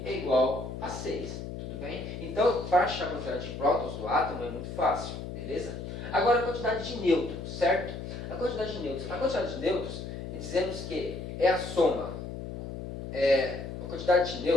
é igual a 6, tudo bem? Então, para achar a quantidade de prótons do átomo é muito fácil, beleza? Agora a quantidade de nêutrons, certo? A quantidade de nêutrons, dizemos que é a soma. A quantidade de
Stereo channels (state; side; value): noise; left; hum, 8 dB below the sound